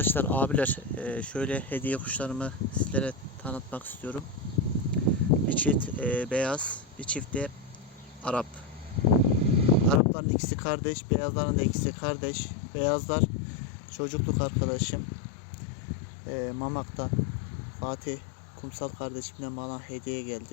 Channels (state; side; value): drops out; right; at 10.0 s